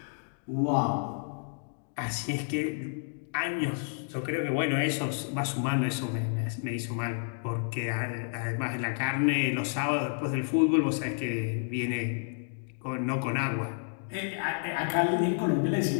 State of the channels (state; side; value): silent; right; digital silence